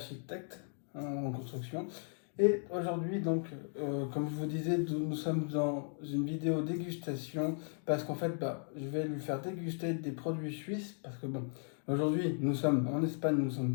en construction. Et aujourd'hui, donc, comme je vous disais, nous sommes dans une vidéo dégustation parce qu'en fait, bah, je vais lui faire déguster des produits suisses parce que bon, aujourd'hui, nous sommes en Espagne, nous ne sommes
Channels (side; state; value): right; silent; 54 dB below the other